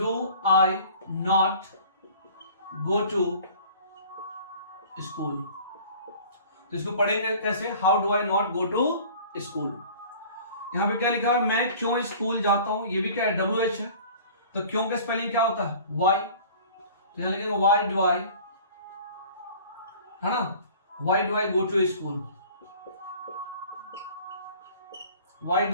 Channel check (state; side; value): inverted; both; correlation -0.46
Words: I not go to school. तो इसको पढ़ेंगे कैसे? How do I not go to school. यहां पे क्या लिखा है? मैं क्यों स्कूल जाता हूं। ये भी क्या है? WH है। तो क्यों का स्पेलिंग क्या होता है? वाई। तो यहां लिखेंगे वाई डू आई, है ना, why do I go to school, why